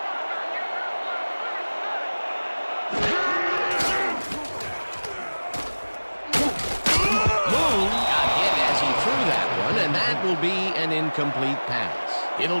And that will be an incomplete pass.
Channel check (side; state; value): both; inverted; correlation -1.00